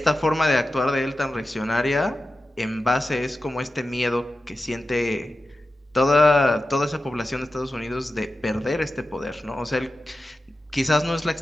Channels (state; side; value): normal; both; correlation 0.93